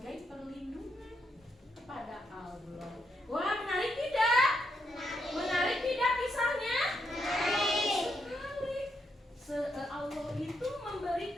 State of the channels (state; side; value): normal; both; correlation 0.80